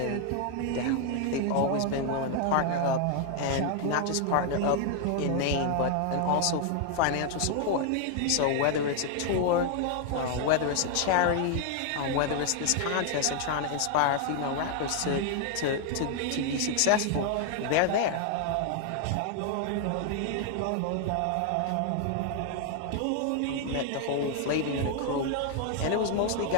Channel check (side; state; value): both; different; correlation 0.00